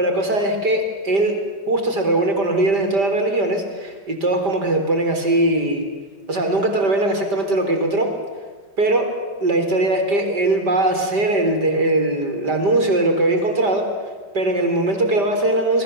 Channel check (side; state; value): left; late; 5.1 ms